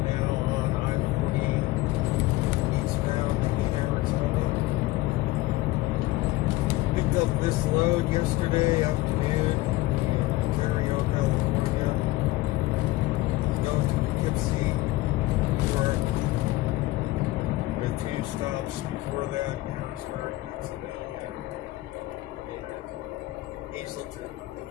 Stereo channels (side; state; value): right; quieter; 18.5 dB